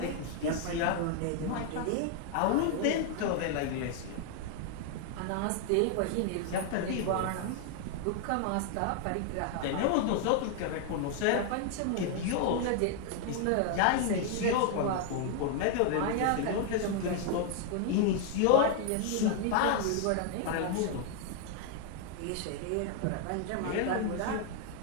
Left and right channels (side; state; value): both; different; correlation 0.00